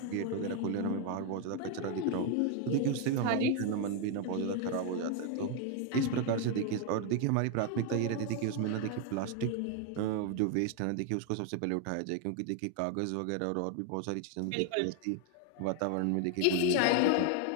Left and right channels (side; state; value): both; different; correlation 0.01